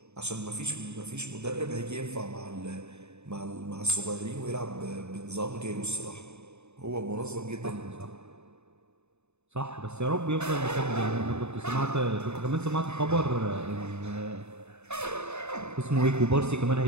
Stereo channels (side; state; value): left; late; 0.81 ms